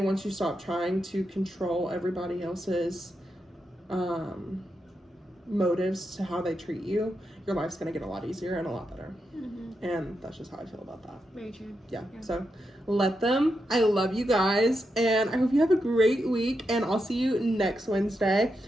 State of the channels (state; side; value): normal; both; correlation 0.85